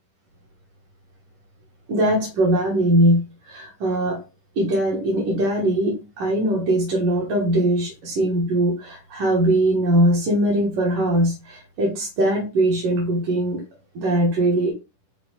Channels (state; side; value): late; left; 10 ms